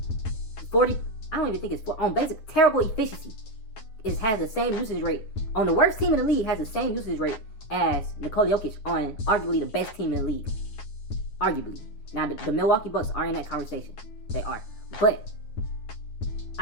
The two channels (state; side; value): late; right; 9.4 ms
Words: 40, I don't even think it's on basic terrible efficiency, has the same usage rate on the worst team in the league, has the same usage rate as Nikola Jokic on arguably the best team in the league. Arguably. Now the Milwaukee Bucks are in that conversation. They are. But